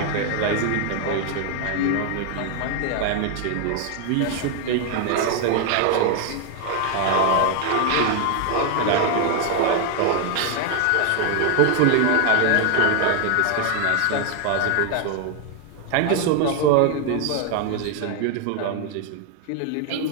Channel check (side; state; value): both; different; correlation 0.00